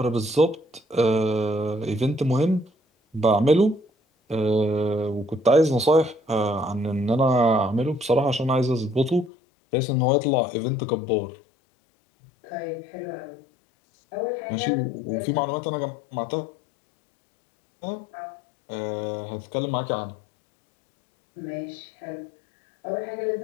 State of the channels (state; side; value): drops out; right; at 9.3 s